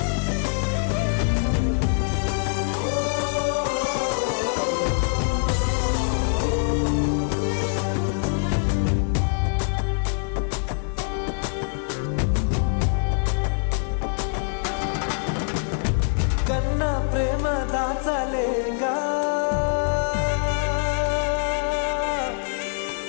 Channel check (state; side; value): silent; right; 63 dB below the other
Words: కన్నా ప్రేమ దాచలేగా